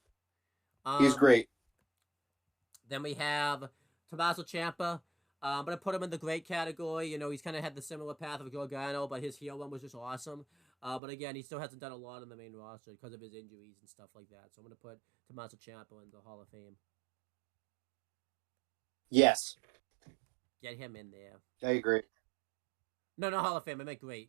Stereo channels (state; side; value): drops out; left; at 11.0 s